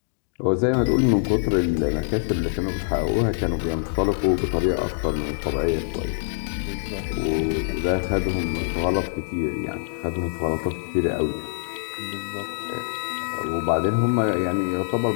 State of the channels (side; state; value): right; silent; digital silence